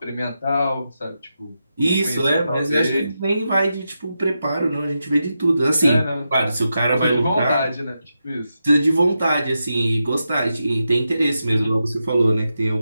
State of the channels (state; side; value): inverted; both; correlation -0.88